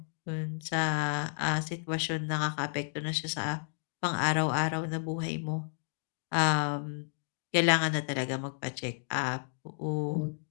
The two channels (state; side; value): silent; right; digital silence